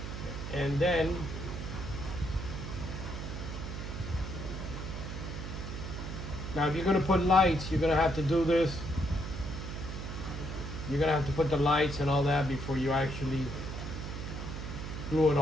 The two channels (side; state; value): right; noise; hum, 6 dB below the sound